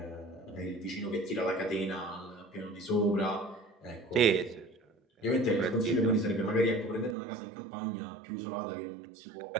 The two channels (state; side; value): drops out; left; at 7.2 s